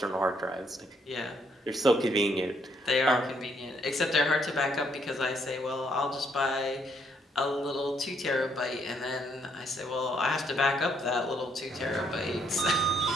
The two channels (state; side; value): normal; both; correlation 0.71